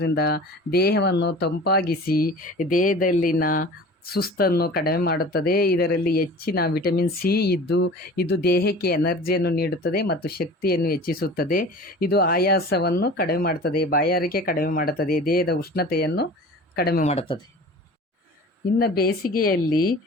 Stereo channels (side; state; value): both; normal; correlation 0.40